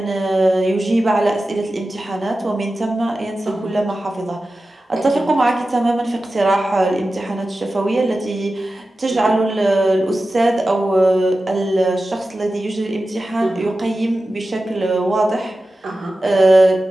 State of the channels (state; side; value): normal; both; correlation 0.94